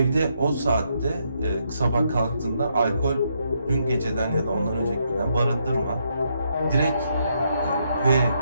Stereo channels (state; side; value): inverted; both; correlation -0.76